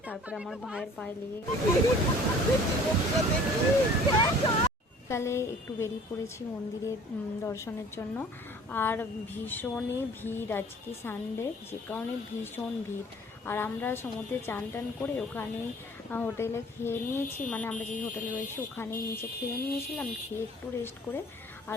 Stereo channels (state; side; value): normal; both; correlation 0.51